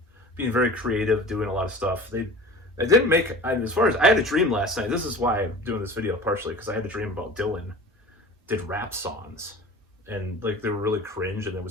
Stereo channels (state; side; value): normal; both; correlation 0.40